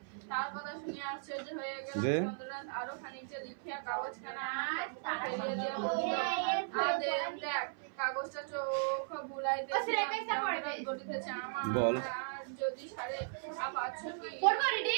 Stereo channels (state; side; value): silent; left; 53 dB below the other